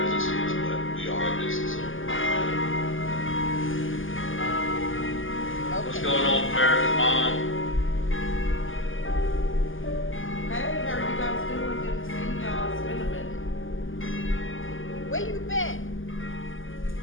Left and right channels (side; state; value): right; late; 0.58 ms